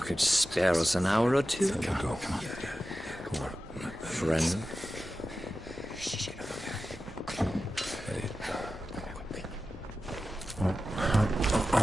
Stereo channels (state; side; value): normal; both; correlation 0.93